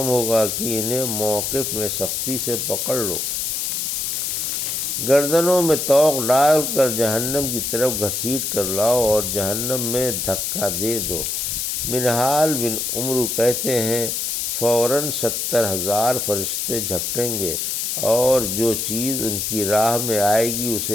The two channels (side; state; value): left; noise; hiss, 1 dB below the sound